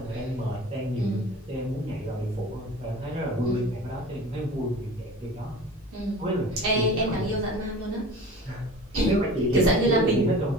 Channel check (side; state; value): both; normal; correlation 0.40